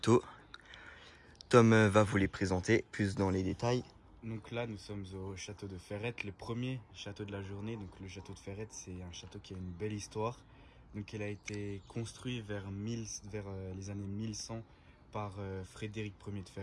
Tom va vous les présenter plus dans les détails. Donc là, nous sommes au château de Ferrette, le premier château de la journée. Donc le château de Ferrette, c'est un château qui a une belle histoire. Donc il a été construit vers les années 1100 par Frédéric Ier de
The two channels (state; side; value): identical; both; correlation 1.00